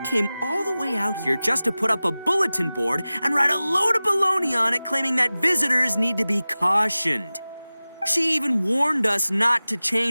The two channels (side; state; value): both; inverted; correlation -0.97